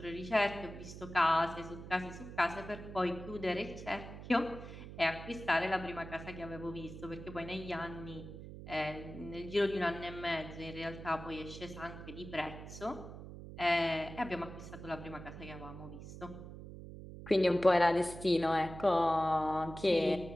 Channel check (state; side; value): noise; right; hum, 12 dB below the sound